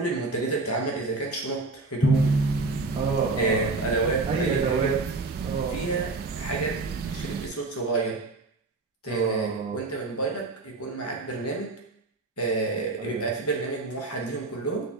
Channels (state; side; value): quieter; left; 3.5 dB